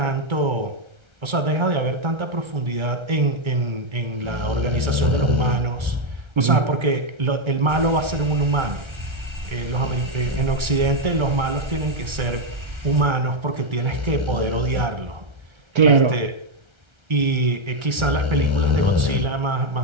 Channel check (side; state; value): left; late; 1.3 ms